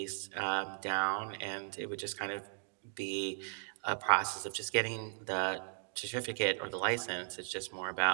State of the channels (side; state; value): left; silent; digital silence